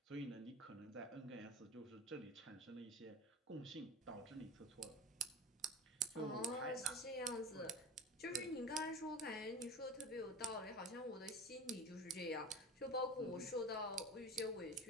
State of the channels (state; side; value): normal; both; correlation 0.31